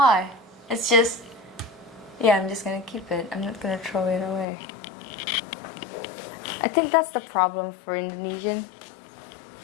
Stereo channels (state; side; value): drops out; right; at 4.5 s